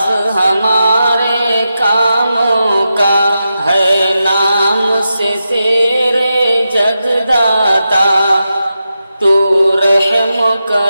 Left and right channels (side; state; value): both; inverted; correlation -0.89